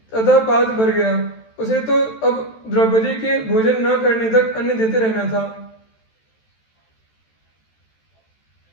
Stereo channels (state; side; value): late; right; 13 ms